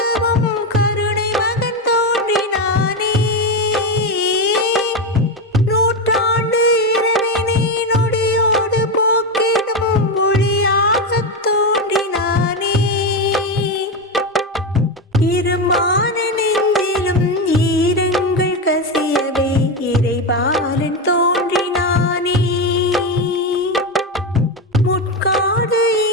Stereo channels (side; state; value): both; normal; correlation 0.13